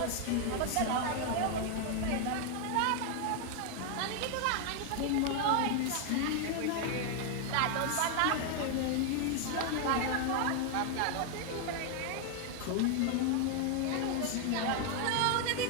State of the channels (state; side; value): different; both; correlation 0.00